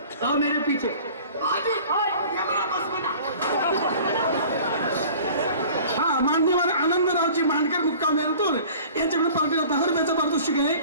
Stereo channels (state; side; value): inverted; both; correlation -0.46